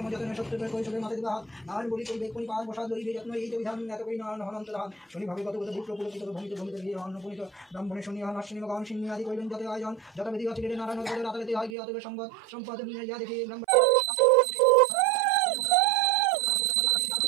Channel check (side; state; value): left; drops out; at 11.8 s